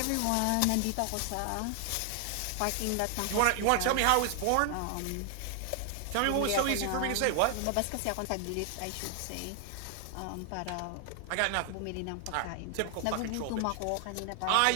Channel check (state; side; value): different; both; correlation 0.00